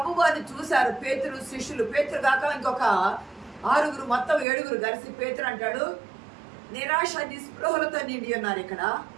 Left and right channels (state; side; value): drops out; left; at 4.5 s